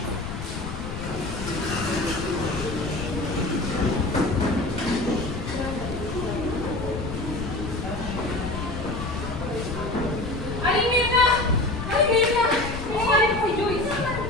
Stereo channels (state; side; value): noise; left; rumble, 6 dB below the sound